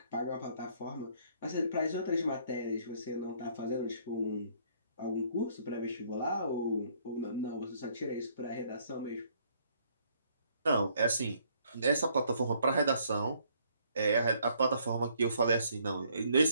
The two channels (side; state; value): both; inverted; correlation -0.65